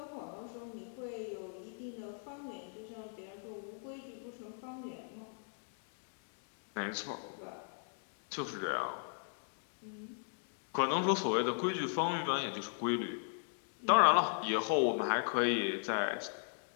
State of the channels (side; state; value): right; silent; digital silence